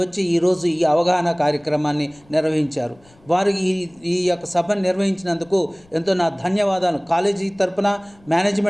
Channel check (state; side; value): noise; left; rumble, 30 dB below the sound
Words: వచ్చి ఈరోజు ఈ అవగాహన కార్యక్రమాన్ని నిర్వహించారు. వారు ఈ యొక్క సభను నిర్వహించినందుకు ఎంతో నా ధన్యవాదాలు, కాలేజీ తరపున